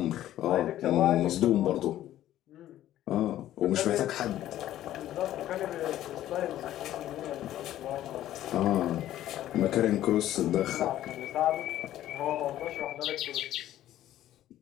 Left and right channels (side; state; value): right; quieter; 13.1 dB